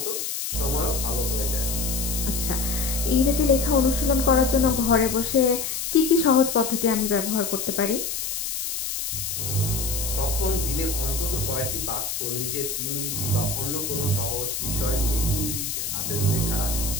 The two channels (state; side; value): noise; left; hiss, 3 dB below the sound